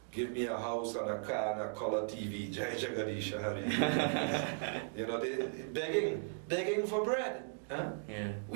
Give me a house and a car and a color TV. Jai Jagadisha Hari. They begging for bread. Huh? Yeah.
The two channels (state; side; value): silent; left; digital silence